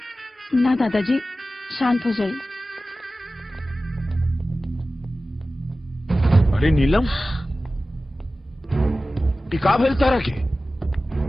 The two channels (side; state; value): both; normal; correlation 0.95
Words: ना दादाजी शांत हो जाइए। अरे नीलम टिका भेल तारा